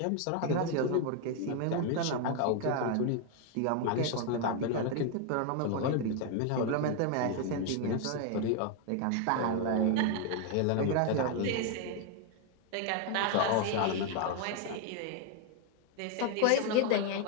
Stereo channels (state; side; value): different; both; correlation 0.01